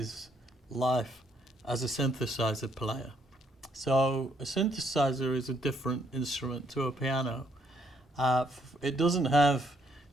life as a synthesizer player. So a synthesizer is a different instrument to a piano. It doesn't have,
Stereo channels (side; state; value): both; normal; correlation 0.71